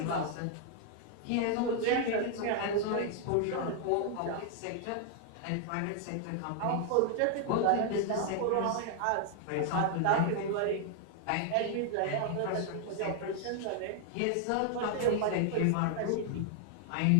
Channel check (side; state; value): both; different; correlation 0.00